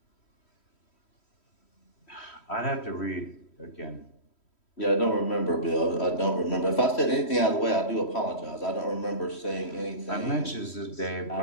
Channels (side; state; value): right; late; 3.1 ms